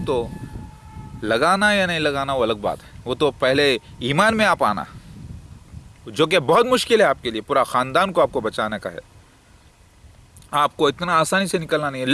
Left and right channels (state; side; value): identical; both; correlation 1.00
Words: तो लगाना या नहीं लगाना वो अलग बात है, वो तो पहले ईमान में आप आना, जो कि बहुत मुश्किल है आपके लिए। पूरा ख़ानदान को आपको बचाने का है, आपको इतना आसानी से निकलना नहीं है।